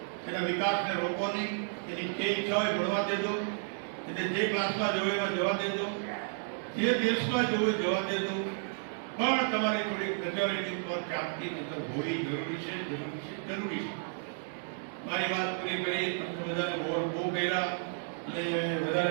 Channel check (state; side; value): silent; left; digital silence